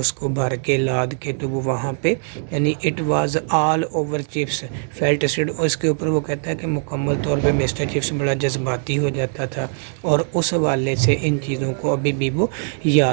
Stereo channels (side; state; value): left; silent; digital silence